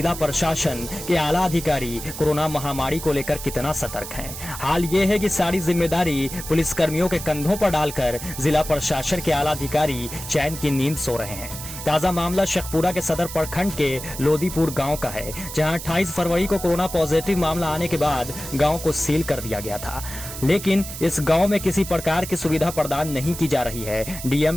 प्रशासन के आला अधिकारी कोरोना महामारी को लेकर कितना सतर्क हैं। हाल ये है कि सारी जिम्मेदारी पुलिसकर्मियों के कंधों पर डालकर जिला प्रशासन के आला अधिकारी चैन की नींद सो रहे हैं। ताजा मामला शेखपुरा के सदर प्रखंड के लोदीपुर गांव का है, जहां 28 फरवरी को कोरोना पॉजिटिव मामला आने के बाद गांव को सील कर दिया गया था। लेकिन इस गांव में किसी प्रकार की सुविधा प्रदान नहीं की जा रही है। डीएम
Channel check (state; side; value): noise; right; hiss, 10 dB below the sound